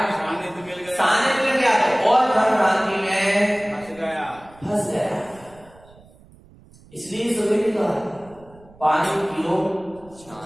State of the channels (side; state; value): right; noise; rumble, 25 dB below the sound